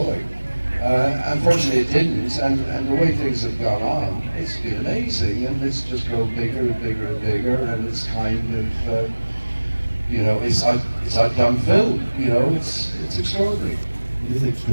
Unfortunately, it didn't, and the way things have gone on, it's been amazing, and it's just grown bigger and bigger and bigger, and it's kind of, you know, it's outdone film. You know, it's extraordinary. It is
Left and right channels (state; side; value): inverted; both; correlation -1.00